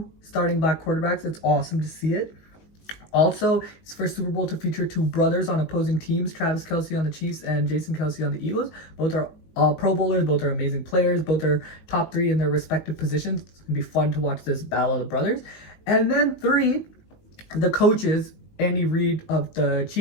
starting black quarterbacks. It's awesome to see it. Also, it's the first Super Bowl to feature 2 brothers on opposing teams, Travis Kelce on the Chiefs and Jason Kelce on the Eagles. Both are Pro Bowlers, both are amazing players, both are top 3 in their respective positions. It's going to be fun to watch this battle of the brothers. And then 3, the coaches, Andy Reid of the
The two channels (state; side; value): late; right; 19 ms